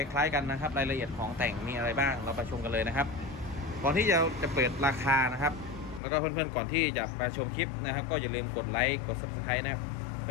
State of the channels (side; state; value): right; drops out; at 6.0 s